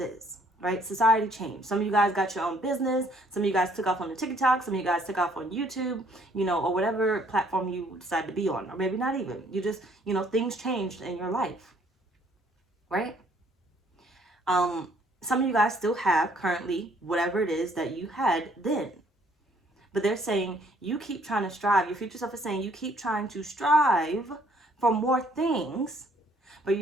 is, right? Society changed. Some of you guys got your own business. Some of you guys took off on the TikTok. Some of you guys took off on YouTube, you know, or whatever platform you decide to be on, or maybe not even. You just, you know, things changed in your life, right? Some of you guys still have currently whatever it is that you had then. But they're saying you keep trying to strive. Your future self is saying you keep trying to strive for more things. But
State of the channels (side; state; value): both; normal; correlation 0.63